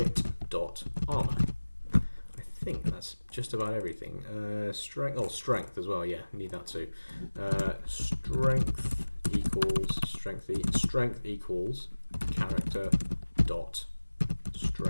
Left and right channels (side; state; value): both; inverted; correlation -1.00